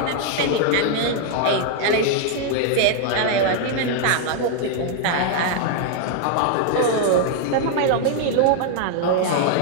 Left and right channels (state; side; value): different; both; correlation 0.00